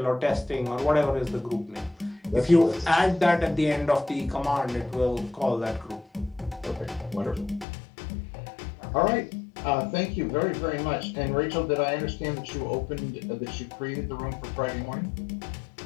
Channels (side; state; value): right; drops out; at 7.7 s